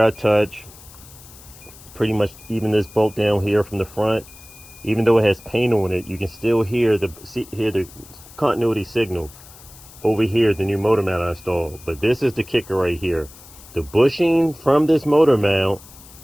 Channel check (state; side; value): noise; left; hiss, 21 dB below the sound